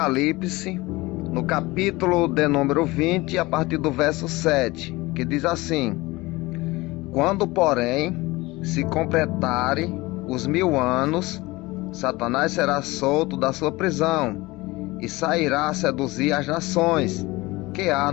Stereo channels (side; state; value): right; quieter; 21.3 dB